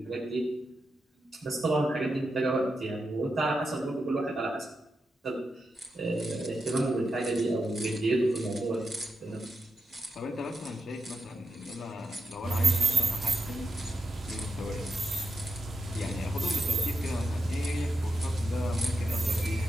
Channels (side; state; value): both; normal; correlation 0.87